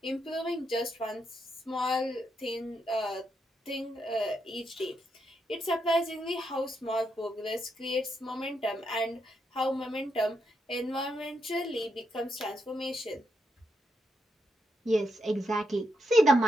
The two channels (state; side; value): normal; both; correlation 0.81